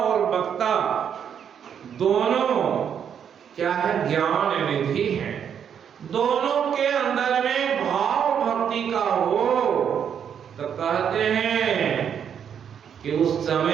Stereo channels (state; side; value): quieter; left; 8.2 dB